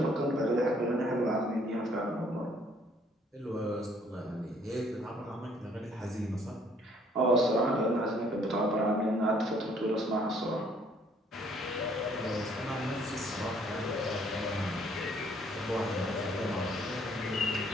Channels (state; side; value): normal; both; correlation 0.62